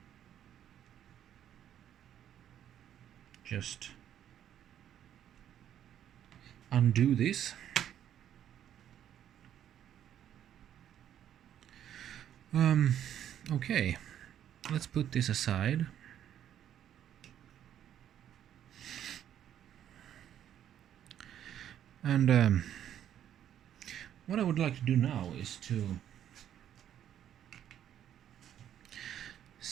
just undo this, okay, let's put this aside. And what I would like to do now is to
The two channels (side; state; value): left; quieter; 10.4 dB